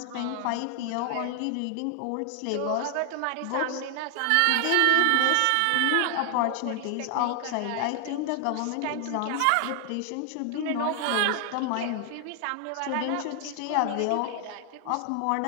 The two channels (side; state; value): both; different; correlation 0.00